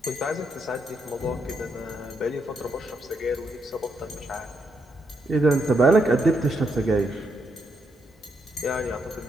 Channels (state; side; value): normal; both; correlation 0.78